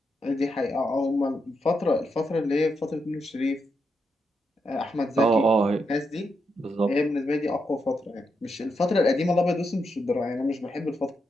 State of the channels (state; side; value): normal; both; correlation 0.83